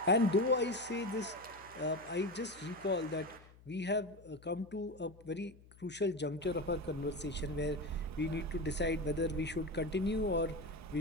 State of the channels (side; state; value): left; noise; hum, 23 dB below the sound